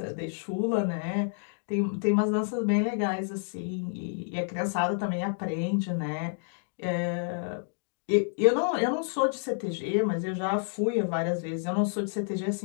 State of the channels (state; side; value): silent; right; 58 dB below the other